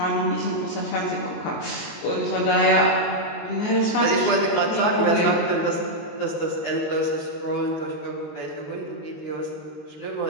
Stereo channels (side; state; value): right; late; 19 ms